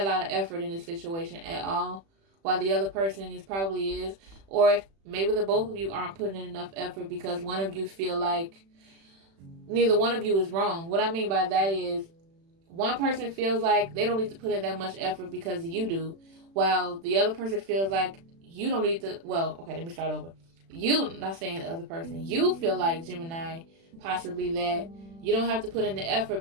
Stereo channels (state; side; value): late; left; 36 ms